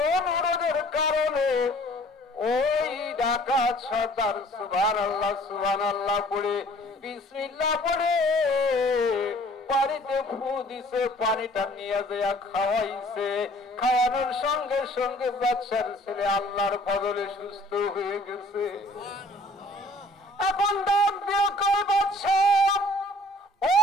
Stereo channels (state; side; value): normal; both; correlation 0.54